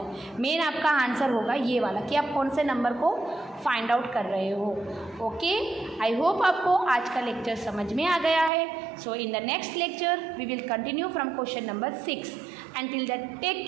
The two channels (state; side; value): drops out; left; at 8.5 s